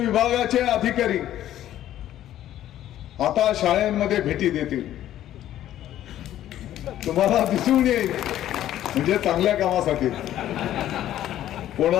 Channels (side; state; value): right; quieter; 12.5 dB